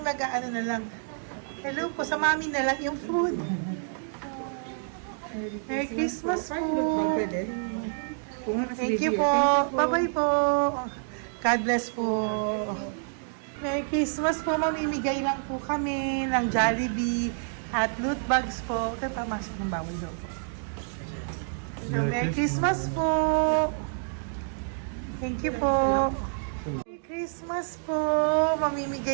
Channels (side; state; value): left; silent; digital silence